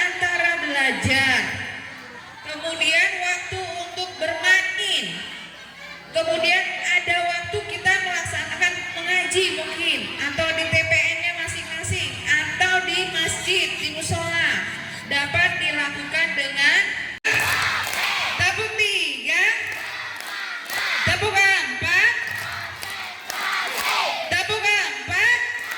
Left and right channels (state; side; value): identical; both; correlation 1.00